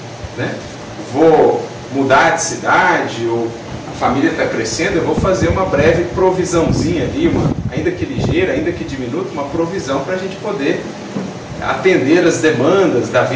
né? Vou mudar de cidade, ou a família está crescendo, eu vou fazer uma breve provisãozinha ali, ainda que ligeira, ainda que diminuta, uma provisão para a gente poder atender as demandas da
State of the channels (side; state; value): both; identical; correlation 1.00